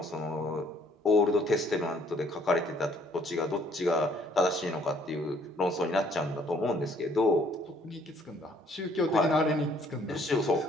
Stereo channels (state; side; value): normal; both; correlation 0.62